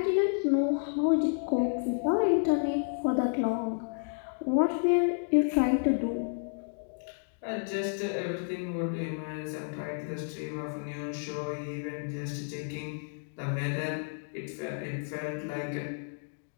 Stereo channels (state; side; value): silent; right; digital silence